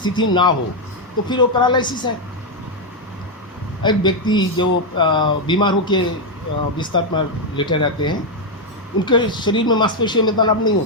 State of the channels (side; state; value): both; normal; correlation 0.02